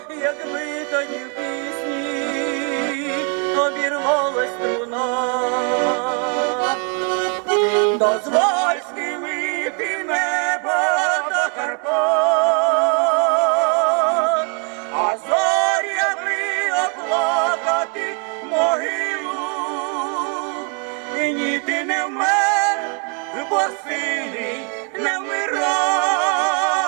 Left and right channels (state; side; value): quieter; left; 38.6 dB